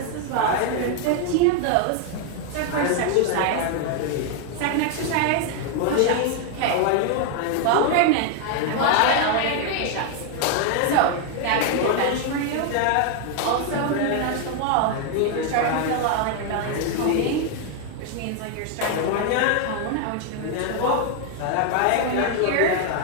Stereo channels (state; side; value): different; both; correlation 0.00